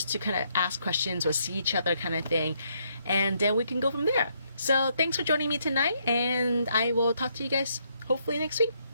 to kind of ask questions or see each other kind of thing. And then we can go from there. So thanks for joining me tonight, and I will talk to you guys hopefully next week.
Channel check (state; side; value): inverted; both; correlation -0.73